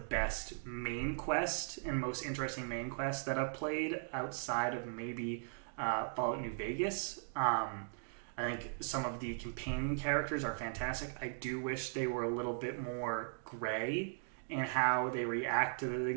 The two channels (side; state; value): left; silent; digital silence